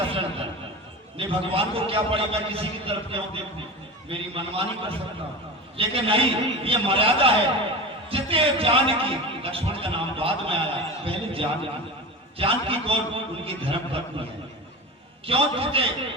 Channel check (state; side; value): normal; both; correlation 0.29